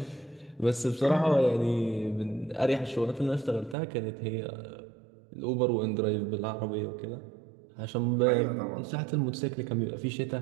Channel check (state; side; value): drops out; left; at 3.8 s